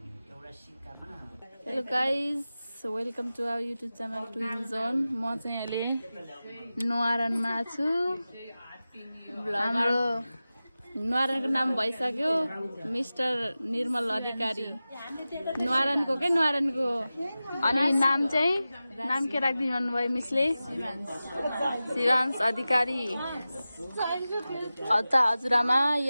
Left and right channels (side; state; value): both; inverted; correlation -0.95